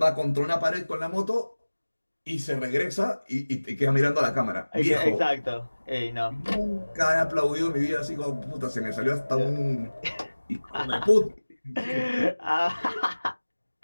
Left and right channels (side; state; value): both; inverted; correlation -1.00